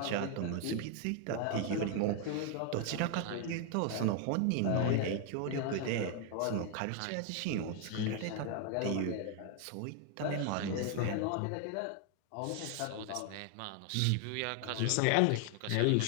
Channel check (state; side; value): different; both; correlation 0.00